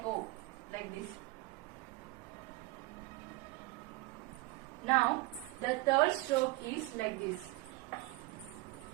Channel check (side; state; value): left; quieter; 20.7 dB